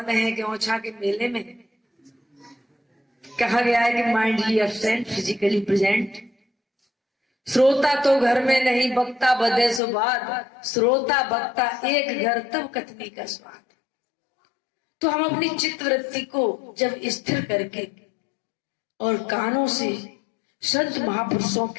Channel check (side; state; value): right; drops out; at 9.8 s